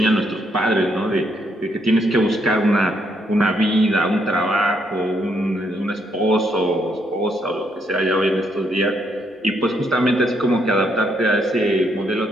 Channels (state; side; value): normal; both; correlation 0.74